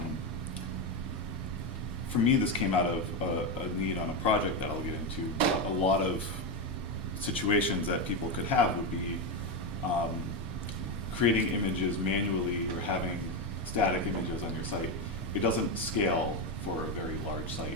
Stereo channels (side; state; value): both; normal; correlation 0.11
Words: For me, this came out of a need on a project that I'll get into. But a lot of situations that people could have would be creating images manually or having static images on your site. It doesn't scale for a very large